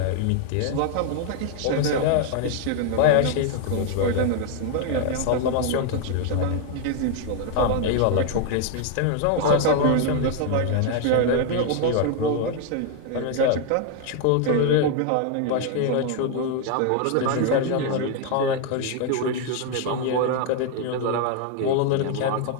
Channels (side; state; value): both; different; correlation 0.01